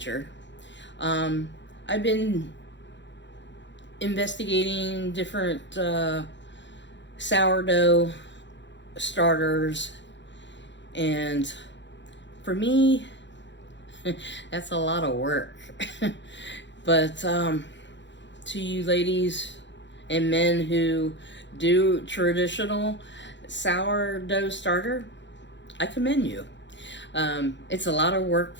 I've been investigating different sourdough starters, and for me, that's a lot of work. But to you ladies and men who do traditional sourdough starter, I commend you. It's a lot of work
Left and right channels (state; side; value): late; right; 0.53 ms